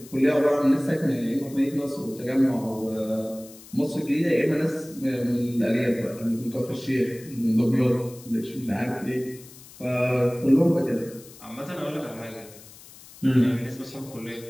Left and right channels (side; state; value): left; noise; hiss, 20 dB below the sound